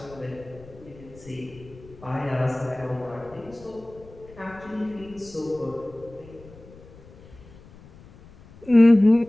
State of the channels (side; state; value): left; noise; rumble, 21 dB below the sound